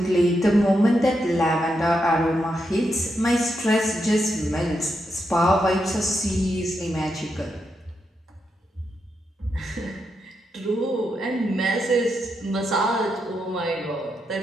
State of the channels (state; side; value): normal; both; correlation 0.83